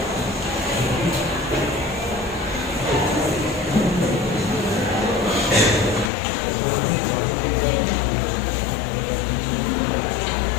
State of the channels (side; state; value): right; drops out; at 6.1 s